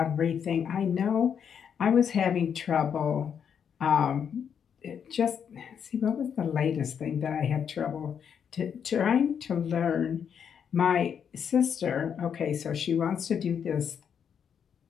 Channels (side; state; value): right; quieter; 7.7 dB